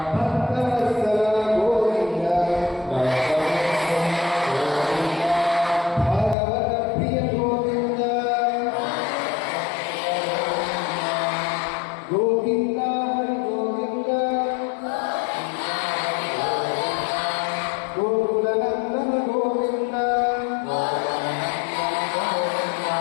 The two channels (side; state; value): right; drops out; at 6.4 s